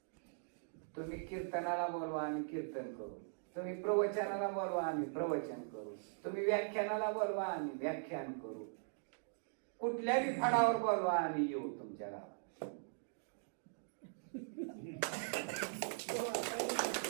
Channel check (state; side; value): silent; left; digital silence